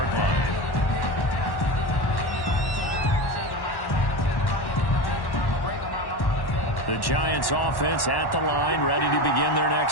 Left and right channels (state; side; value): late; right; 1.1 ms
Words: line. The Giants offense at the line, ready to begin their